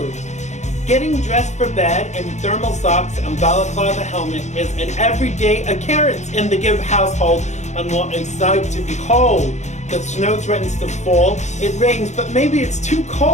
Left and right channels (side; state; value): right; late; 0.34 ms